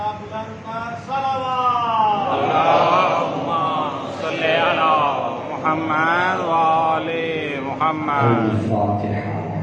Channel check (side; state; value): both; identical; correlation 1.00